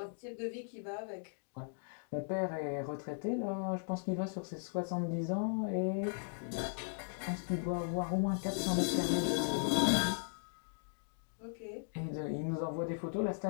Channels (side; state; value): right; silent; digital silence